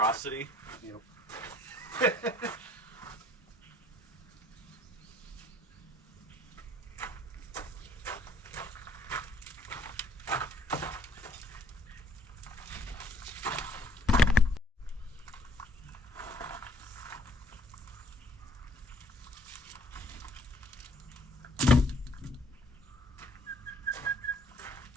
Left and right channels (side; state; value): both; normal; correlation 0.62